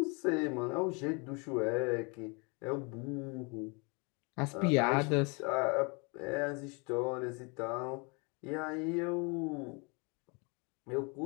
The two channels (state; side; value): quieter; right; 31.4 dB